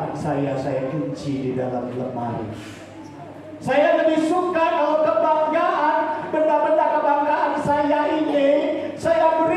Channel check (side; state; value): both; identical; correlation 1.00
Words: saya kunci di dalam lemari. Saya lebih suka kalau kebanggaan, benda-benda kebanggaan saya ini saya